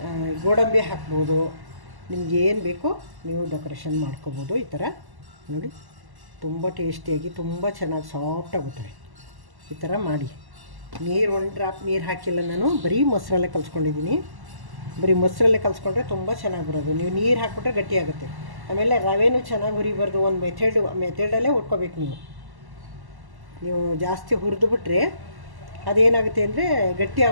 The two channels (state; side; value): late; left; 1.1 ms